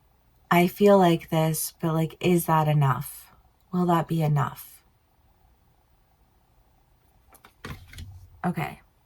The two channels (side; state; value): both; identical; correlation 1.00